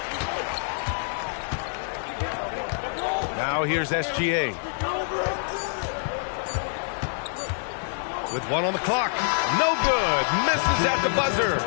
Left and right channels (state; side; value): silent; right; digital silence